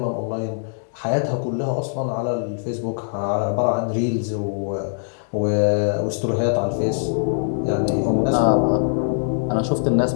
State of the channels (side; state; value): right; silent; digital silence